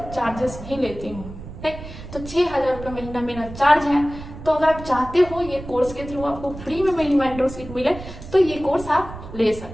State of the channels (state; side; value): noise; right; rumble, 13 dB below the sound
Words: चार्जेस ही लेती हूँ। ठीक, तो 6000 रुपये महीना मेरा चार्ज है। तो अगर आप चाहते हो ये कोर्स के थ्रू आपको फ्री में मेरी मेंटरशिप मिले तो ये कोर्स आप ले